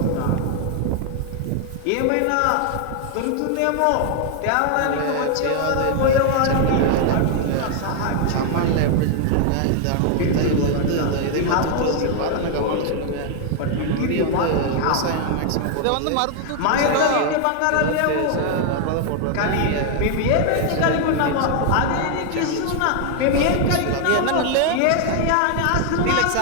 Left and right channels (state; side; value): different; both; correlation 0.00